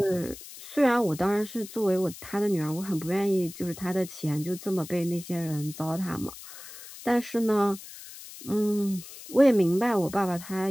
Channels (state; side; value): noise; left; hiss, 15 dB below the sound